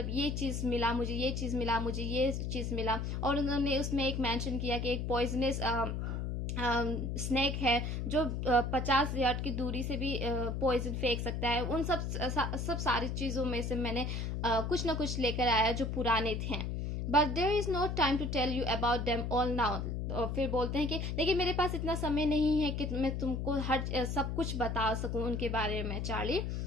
ये चीज़ मिला मुझे, ये चीज़ मिला. और उन्होंने उसमें एक मेंशन किया कि एक पॉइजनस स्नेक है जो 50 यार्ड की दूरी से भी पॉइजन फेंक सकता है। उन सब सारी चीज़ों में से मैंने कुछ ना कुछ लेकर आया जो पुराने थे। But there is no time to tell you about them all now. और फिर बोलते हैं कि लेकिन मेरे पास इतना समय नहीं है कि मैं तुमको हर सब कुछ बता सकूं उनके बारे में Charlie.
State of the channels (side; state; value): left; noise; hum, 2 dB below the sound